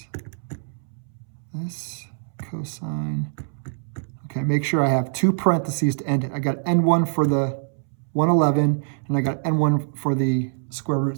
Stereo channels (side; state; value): left; silent; 63 dB below the other